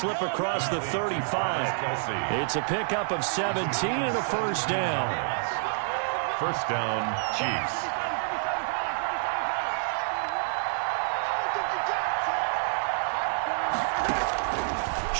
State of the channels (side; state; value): left; silent; digital silence